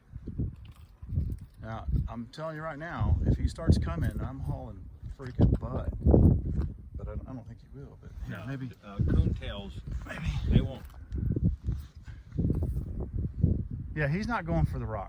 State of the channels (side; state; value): both; identical; correlation 1.00